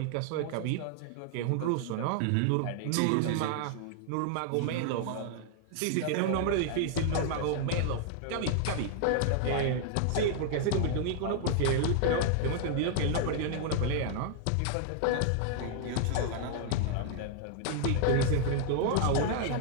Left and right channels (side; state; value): both; different; correlation -0.01